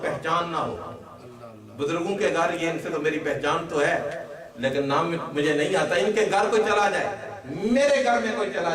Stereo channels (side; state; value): both; identical; correlation 1.00